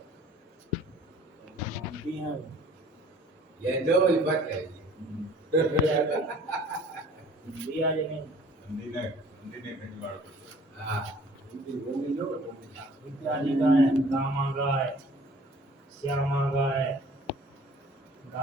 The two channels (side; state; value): both; normal; correlation 0.52